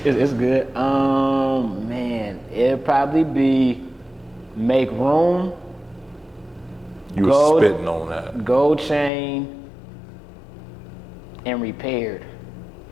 It's good. Man, it'd probably be Make Room. You were spitting on that. Gold Chain and Repaired.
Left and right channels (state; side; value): drops out; right; at 9.1 s